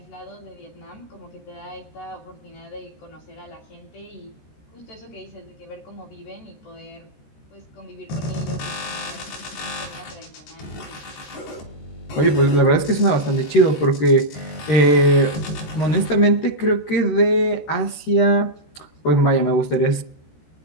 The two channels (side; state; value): right; late; 13 ms